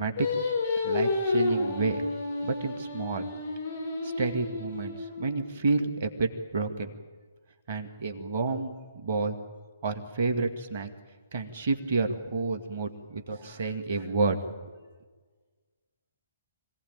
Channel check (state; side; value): inverted; both; correlation -0.70